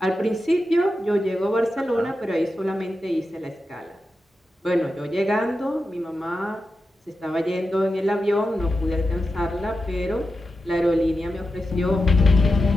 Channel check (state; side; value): normal; both; correlation 0.90